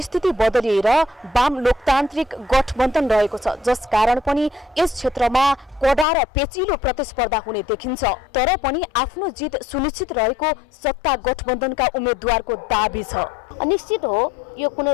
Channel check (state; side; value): drops out; right; at 6.1 s